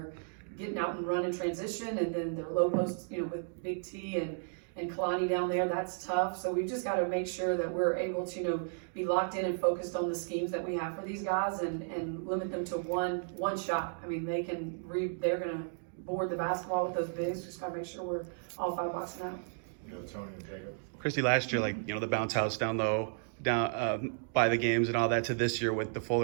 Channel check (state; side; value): silent; left; digital silence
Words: getting out and run in transition, and then their low post, with Big T and Kalani down there. That's tough. So we've just got to make sure that we're able to, be locked in and focused on the schemes that we have for these guys, and limit them to one shot. They're going to board the basketball with those bigs. Just got to make sure we're all five boxing out. Tony and Jacob. Christy, last year, the bounce house down low, by the games and all that, to this year with the full